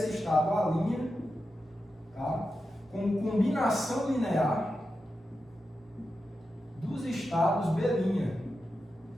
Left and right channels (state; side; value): normal; both; correlation 0.90